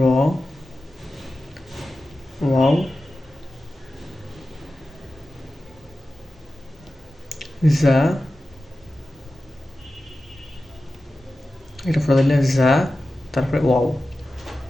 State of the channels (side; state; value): both; normal; correlation 0.94